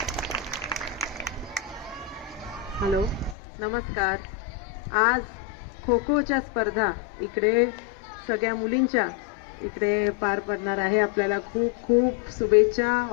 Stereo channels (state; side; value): drops out; right; at 3.4 s